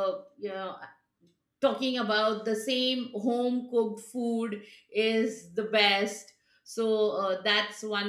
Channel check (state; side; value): identical; both; correlation 1.00